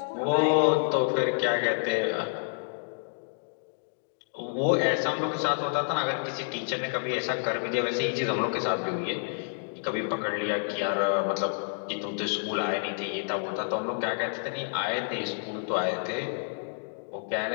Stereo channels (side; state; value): right; silent; 59 dB below the other